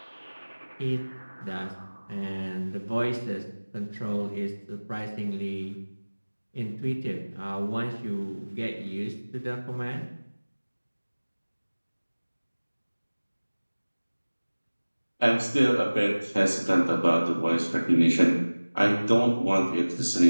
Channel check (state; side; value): inverted; both; correlation -1.00